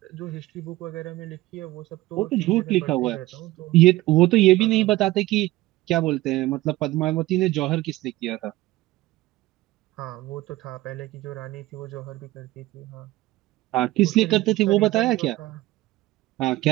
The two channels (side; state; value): left; quieter; 17.9 dB